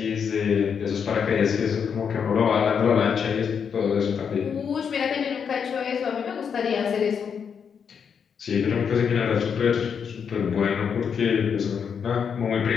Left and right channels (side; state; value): right; quieter; 6.9 dB